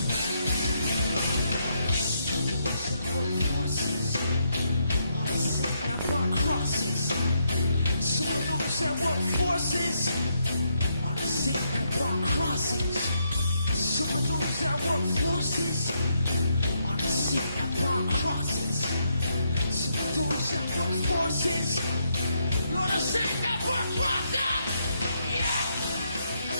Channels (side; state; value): both; inverted; correlation -0.77